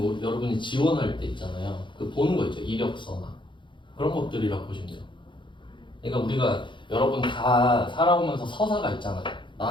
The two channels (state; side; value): late; right; 0.23 ms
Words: 여러분이 지원할 때 있잖아요. 그 보는 거 있죠. 이력서나 그런 것들이라고 보시면 돼요. 그러니까 우리가 여러분 다 살아오면서 서사가 있잖아요.